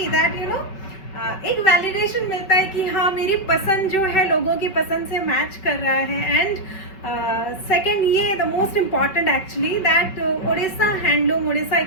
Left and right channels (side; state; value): right; late; 5.3 ms